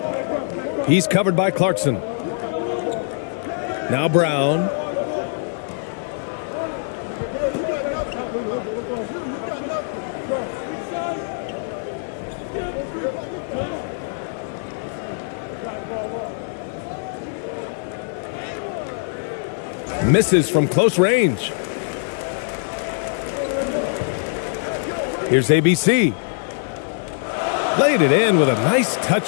He's covered by Clarkson. Now Brown. Misses from close range. Here's ABC. Laid it in with a nice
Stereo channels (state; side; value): silent; right; 61 dB below the other